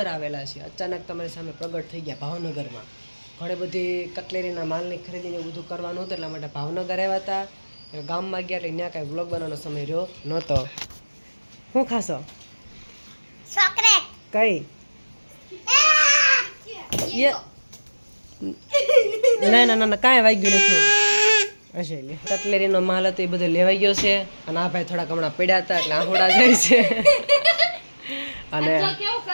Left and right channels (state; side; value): inverted; both; correlation -1.00